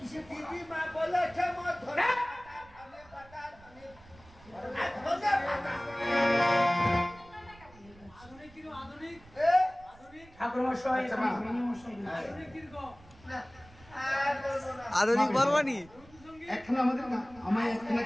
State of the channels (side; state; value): right; noise; rumble, 24 dB below the sound